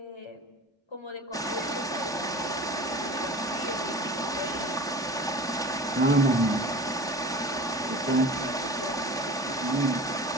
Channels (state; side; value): normal; both; correlation 0.38